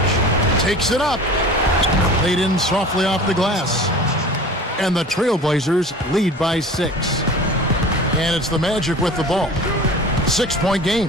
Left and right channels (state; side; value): normal; both; correlation 0.40